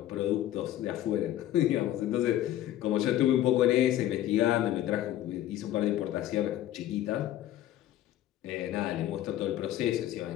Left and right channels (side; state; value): right; quieter; 13.0 dB